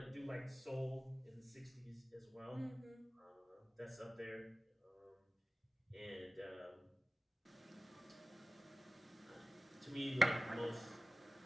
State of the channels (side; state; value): both; normal; correlation 0.96